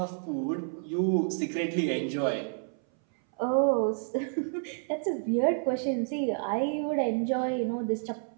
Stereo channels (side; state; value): left; silent; 58 dB below the other